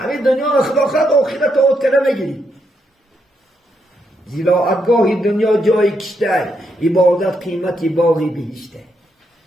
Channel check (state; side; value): normal; both; correlation 0.79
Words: دنیا رو خدا خواهد آخرت آت کنه میگیریم زیراعتگاهی دنیا جای کشته عبادت قیمتی باقی بهشته